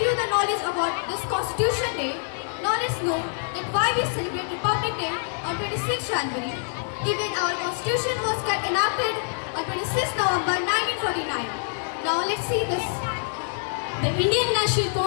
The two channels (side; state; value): right; silent; 55 dB below the other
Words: you the knowledge about this Constitution Day. Now let's know that why we celebrate Republic Day on 26th January, given our Constitution was enacted on 26th November 1949. Now let's see this. The Indian National